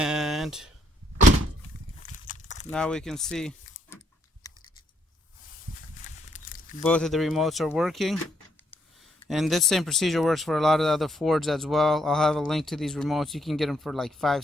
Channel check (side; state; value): both; normal; correlation 0.73